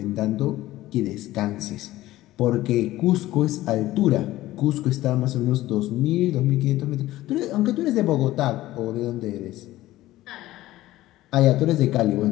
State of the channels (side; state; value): right; quieter; 16.0 dB